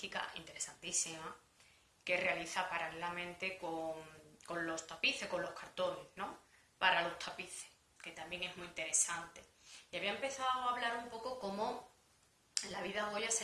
interesantísima, que realiza paralelamente con los tapices, con los cartones, ¿no? Para los tapices, que también es muy interesante. Y había empezado a hablar un poco cómo la vida a Goya se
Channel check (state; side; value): identical; both; correlation 1.00